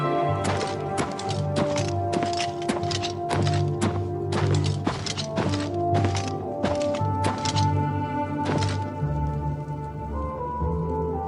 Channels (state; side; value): identical; both; correlation 1.00